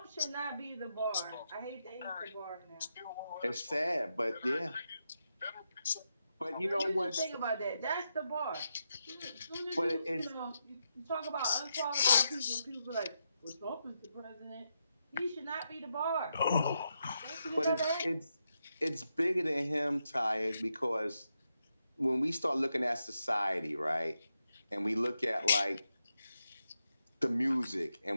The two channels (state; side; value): inverted; both; correlation -0.84